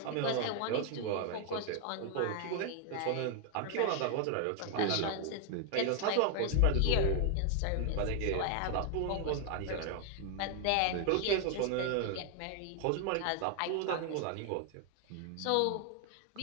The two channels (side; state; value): both; different; correlation 0.00